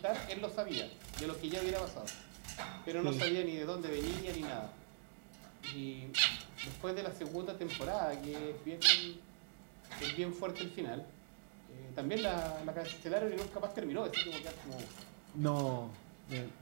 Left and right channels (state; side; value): silent; left; digital silence